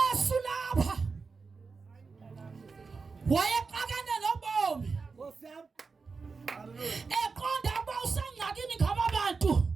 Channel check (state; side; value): quieter; left; 4.6 dB